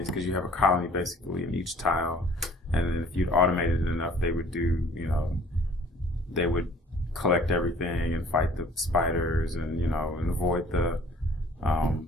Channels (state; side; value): normal; both; correlation 0.53